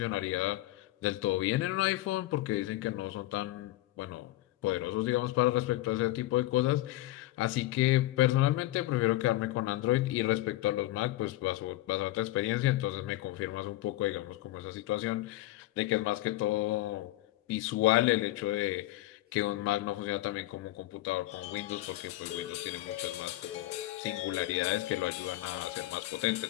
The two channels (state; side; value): quieter; right; 16.7 dB